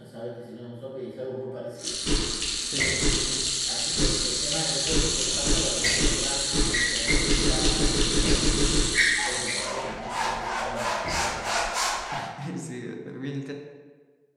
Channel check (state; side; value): identical; both; correlation 1.00